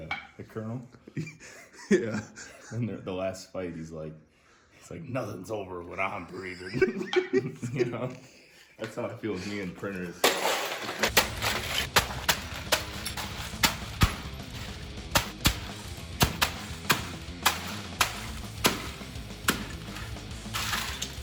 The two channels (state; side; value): identical; both; correlation 1.00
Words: Colonel. Yeah. And the last fight, he's like nothing's over when I'm breathing. You know, that's how I feel with me and printers.